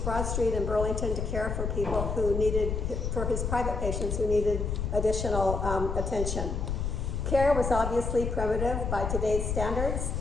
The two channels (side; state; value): left; noise; rumble, 2 dB below the sound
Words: Broad Street in Burlington to care for people who needed, for his private patients who needed additional attention. Care was obviously primitive by today's standards.